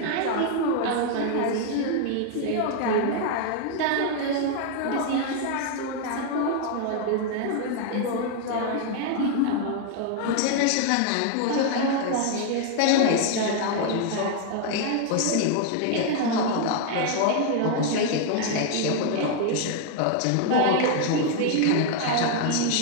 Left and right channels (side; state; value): both; different; correlation 0.00